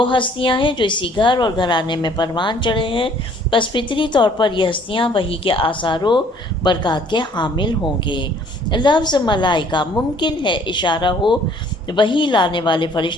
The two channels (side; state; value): both; normal; correlation 0.58